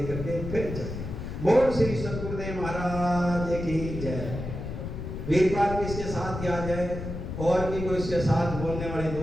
के फिर जाए। बोल श्री सद्गुरुदेव महाराज की जय। वीरपाल भी इसके साथ ही आ जाए और भी कोई इसके साथ बोलने वाले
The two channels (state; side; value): noise; left; rumble, 6 dB below the sound